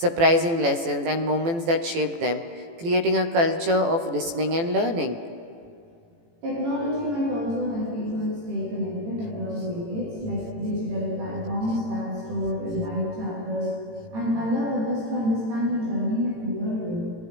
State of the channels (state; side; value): late; left; 18 ms